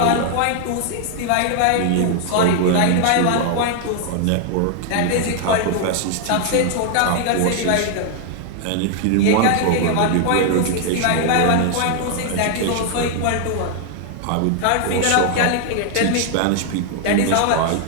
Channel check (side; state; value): both; different; correlation 0.00